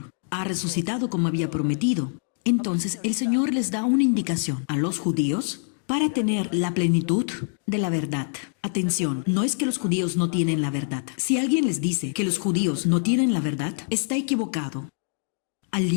Ha resucitado como había prometido. Entonces el Señor les da una indicación a los judíos para tener la plenitud de la verdad. Atención, no es que los judíos no tienen la verdad. Si alguien les dice que los judíos no tienen la verdad, está equivocado. Al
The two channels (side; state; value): right; silent; digital silence